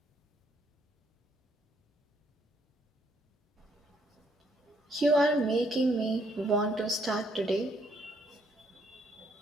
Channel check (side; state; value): both; normal; correlation 0.69